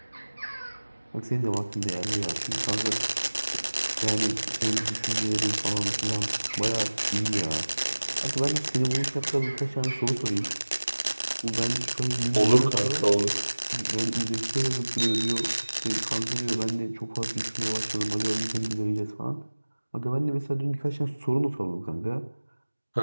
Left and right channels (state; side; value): inverted; both; correlation -1.00